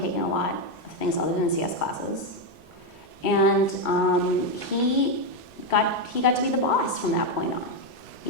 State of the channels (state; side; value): normal; both; correlation 0.05